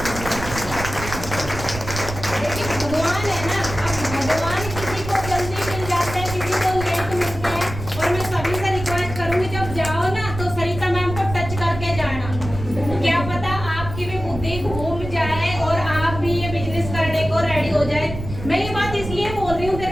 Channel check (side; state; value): right; noise; rumble, 9 dB below the sound